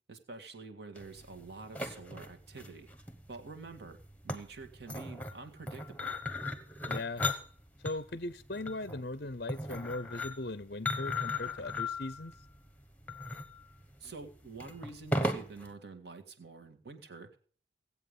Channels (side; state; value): both; normal; correlation 0.51